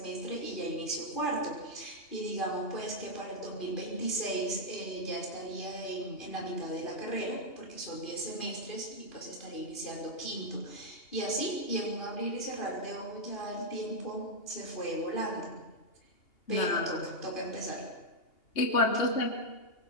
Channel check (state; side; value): late; right; 2.8 ms